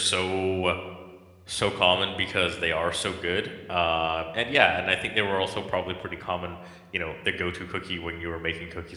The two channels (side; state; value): both; identical; correlation 1.00